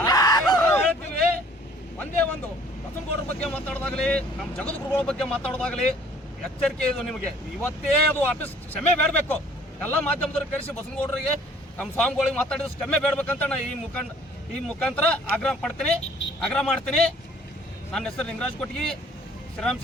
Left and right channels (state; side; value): normal; both; correlation 0.55